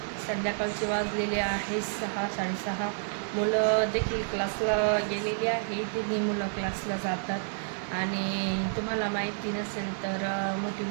संध्याकाळचे वाजलेले आहे 6-6:30. मुलं देखील क्लासला गेलेली आहे. तिन्ही मुलं क्लासला जातात. आणि तुम्हाला माहिती नसेल तर मोठी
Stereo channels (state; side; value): silent; left; digital silence